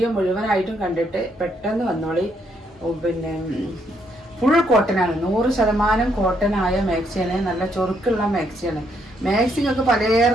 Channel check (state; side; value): normal; both; correlation 0.73